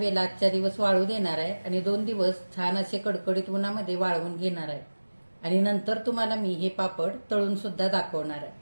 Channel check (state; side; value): inverted; both; correlation -1.00